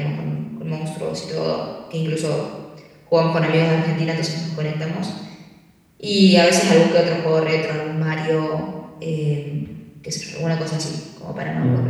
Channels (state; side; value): identical; both; correlation 1.00